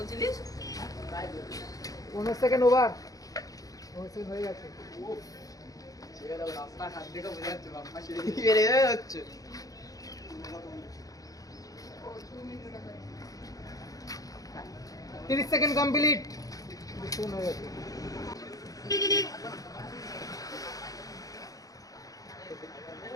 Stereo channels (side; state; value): right; late; 0.17 ms